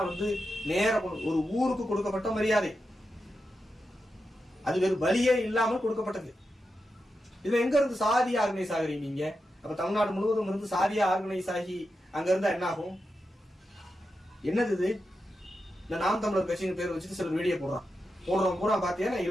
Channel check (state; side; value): normal; both; correlation 0.88